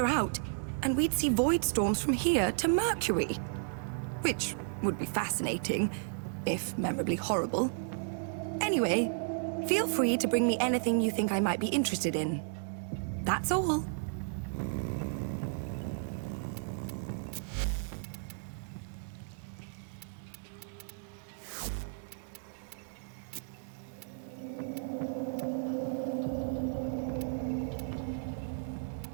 out, and we'd see void storms from here to Mercury. Which would be fascinating, if memorably horrible. Anyway, feel free to bring me anything you think I might be interested in. That's all.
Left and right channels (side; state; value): left; silent; digital silence